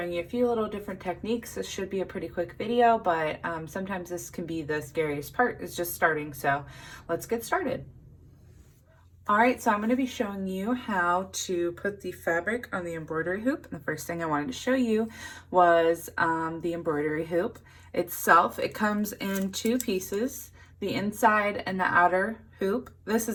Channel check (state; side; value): identical; both; correlation 1.00